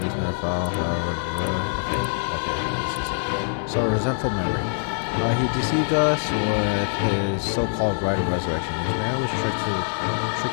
never fell. Okay, this is it. So, a resentful memory. He deceived us with his so-called right of resurrection. This man was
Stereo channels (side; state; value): right; silent; digital silence